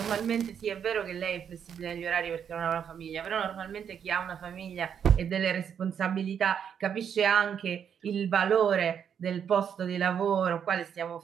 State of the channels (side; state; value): left; quieter; 8.0 dB